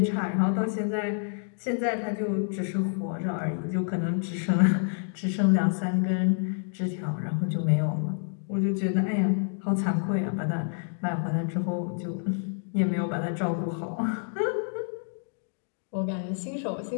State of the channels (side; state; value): right; silent; digital silence